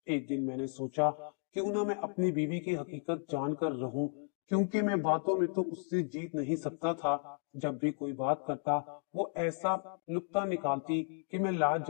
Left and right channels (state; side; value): silent; right; 55 dB below the other